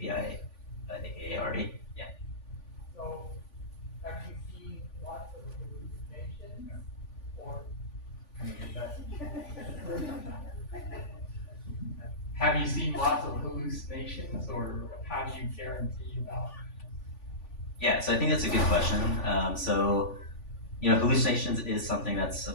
aka ARE. Yeah. So have you seen lots of hallucinations or? Have you seen lots of hallucinations, or how do you guarantee about? Yeah, so I think that's a good question. Hallucinations is something that's,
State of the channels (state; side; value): late; right; 3.5 ms